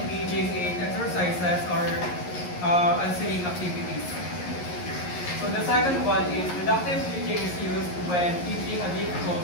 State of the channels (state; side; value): late; right; 11 ms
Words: in exercises or answering activities. So the second one is deductive teaching is used when teaching a difficult